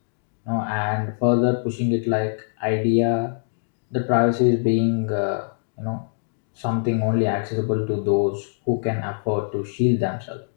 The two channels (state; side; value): silent; right; digital silence